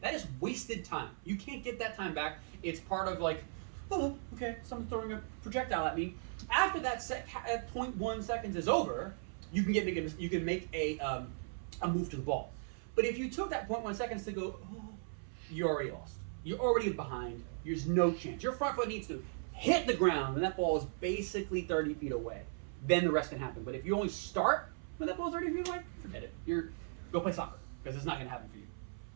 that is wasted time. You can't get that time back. It's part of like, oh, okay, someone's throwing a projectile at me. After that 0.1 seconds is over, you can make a move to the ball. But if you took that 0.1 seconds to go, oh, you're already lost. You're already behind. There's no chance. Your front foot needs to hit the ground, and that ball is basically 30 feet away. Then the rest can happen. But if you only start when that ball's 30 feet away, forget it. Go play soccer, because it's not going to happen for you.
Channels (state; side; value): silent; left; 53 dB below the other